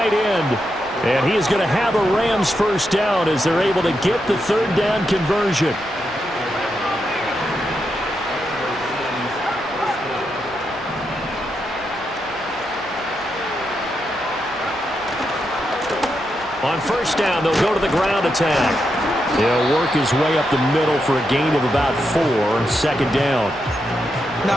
end. And he is going to have a Rams 1st down as they're able to get the 3rd down conversion. On 1st down, they'll go to the ground attack. He'll work his way up the middle for a gain of about 4. 2nd down.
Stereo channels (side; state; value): right; noise; rumble, 22 dB below the sound